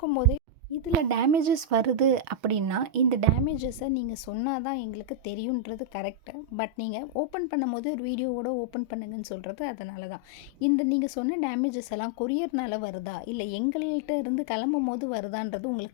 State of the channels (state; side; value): late; left; 6.2 ms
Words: இதில் டேமேஜஸ் வருது அப்படின்னா இந்த டேமேஜஸை நீங்கள் சொன்னால் தான் எங்களுக்கு தெரியுன்றது கரெக்டு. பட் நீங்கள் ஓப்பன் பண்ணும்போது ஒரு வீடியோவோட ஓப்பன் பண்ணுங்கன்னு சொல்கிறது அதனால தான். இந்த நீங்கள் சொன்ன டேமேஜஸ் எல்லாம் கொரியர்னால் வருதா இல்லை எங்கள்கிட்ட இருந்து கிளம்பும் போது வருதான்றது